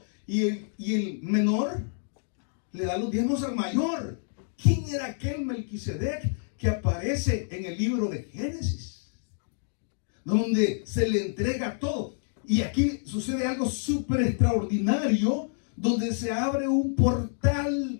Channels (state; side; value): silent; right; digital silence